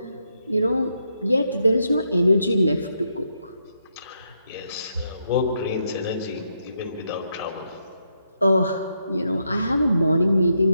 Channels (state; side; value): inverted; both; correlation -0.80